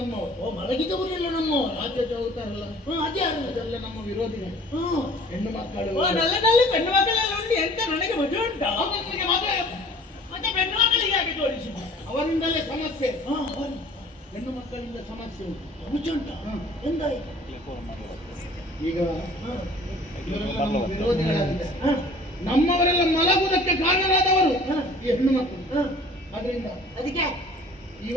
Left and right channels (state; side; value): normal; both; correlation 0.49